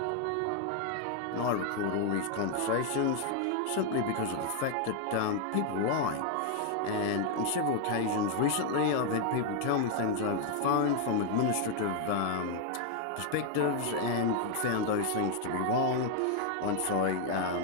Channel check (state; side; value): different; both; correlation 0.00